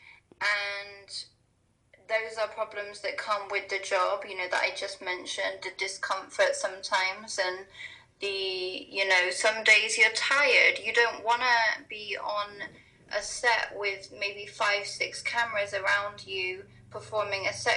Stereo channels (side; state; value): both; identical; correlation 1.00